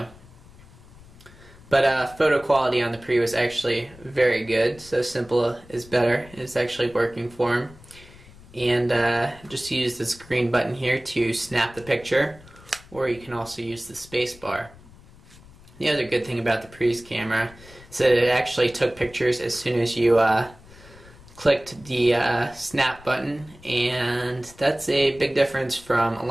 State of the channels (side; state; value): left; noise; rumble, 22 dB below the sound